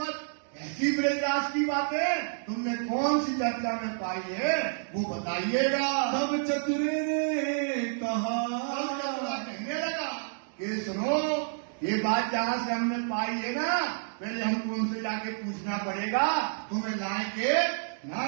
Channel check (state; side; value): silent; left; digital silence